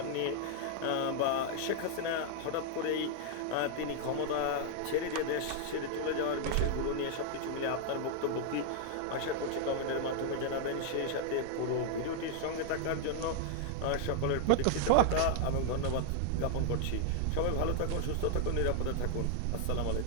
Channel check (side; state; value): both; different; correlation -0.01